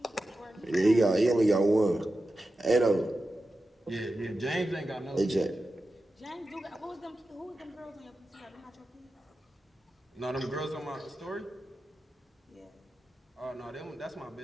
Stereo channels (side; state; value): both; normal; correlation 0.92